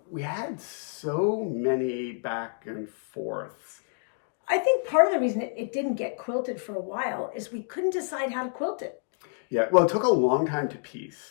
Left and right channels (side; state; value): right; silent; digital silence